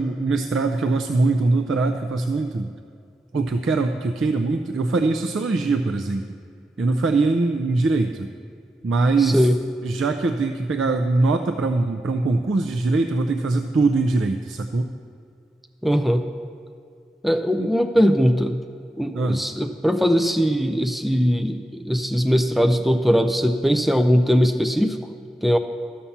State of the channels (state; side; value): normal; both; correlation 0.88